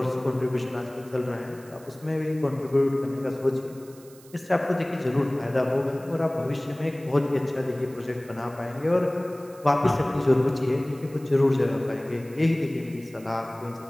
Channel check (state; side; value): noise; right; hiss, 24 dB below the sound